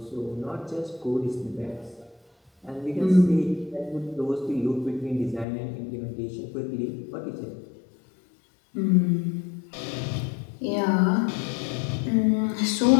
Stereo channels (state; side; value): drops out; right; at 5.5 s